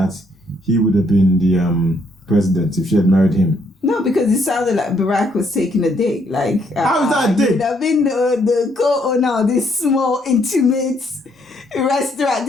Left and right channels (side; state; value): both; normal; correlation 0.71